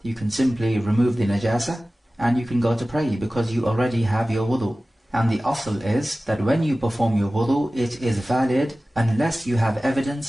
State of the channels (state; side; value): normal; both; correlation 0.96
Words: you can simply remove the najasa and you can go to pray because you already have your wudu. And the asl is that when you perform your wudu, it is valid unless you have